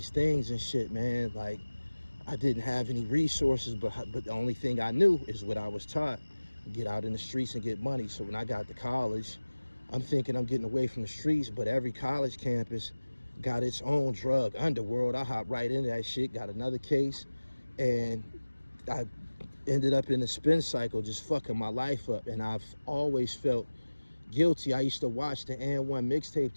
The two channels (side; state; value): both; inverted; correlation -1.00